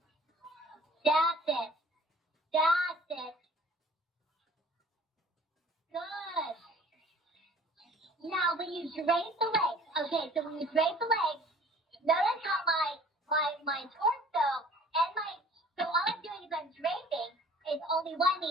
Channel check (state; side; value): normal; both; correlation 0.50